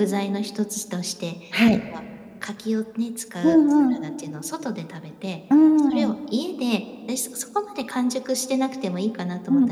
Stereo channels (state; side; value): identical; both; correlation 1.00